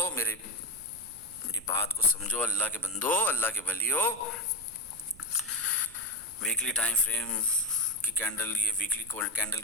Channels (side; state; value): right; noise; rumble, 22 dB below the sound